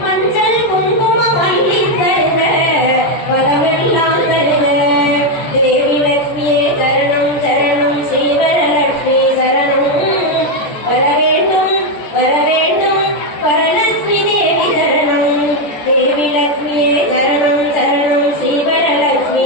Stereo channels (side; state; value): right; late; 13 ms